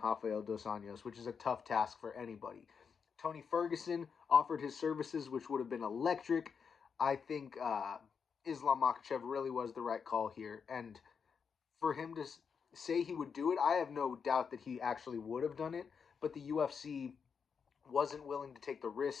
Rafael Dos Anjos, which is a tough task for anybody. Tony Ferguson offered his services, which would have been electric. I think Islam Makhachev really was the right call here. And for him to say he would do it, I have no doubt that he actually would have done it. But the UFC wasn't willing to take the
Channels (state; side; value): quieter; right; 6.3 dB